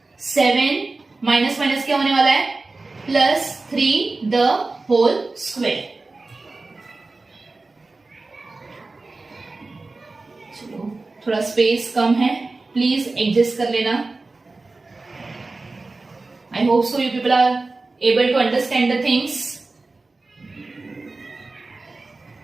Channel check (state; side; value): quieter; left; 3.5 dB